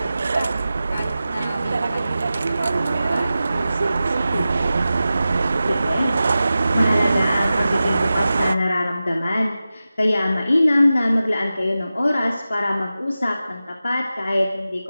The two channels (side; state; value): both; inverted; correlation -0.94